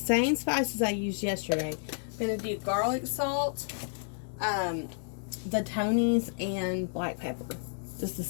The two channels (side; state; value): right; silent; digital silence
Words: spices I used yesterday. I'm going to do garlic salt, the Tony's, and black pepper. Just the